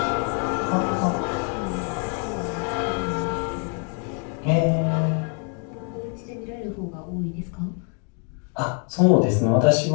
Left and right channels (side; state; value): right; quieter; 35.0 dB